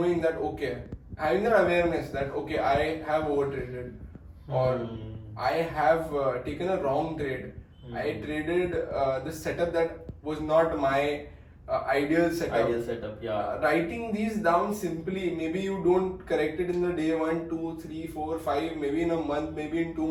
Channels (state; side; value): identical; both; correlation 1.00